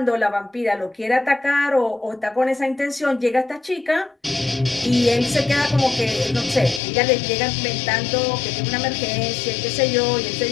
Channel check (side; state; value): right; drops out; at 6.8 s